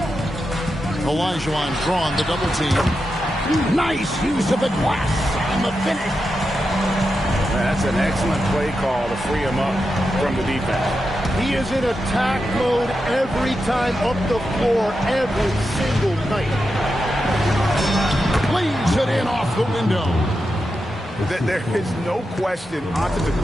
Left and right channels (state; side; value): normal; both; correlation 0.88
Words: Olajuwon drawn the double team. Nice use of the glass on the finish. That's an excellent play call to free him up from the defense. He is in attack mode every time up the floor, every single night. Leads it in off the window. There is no question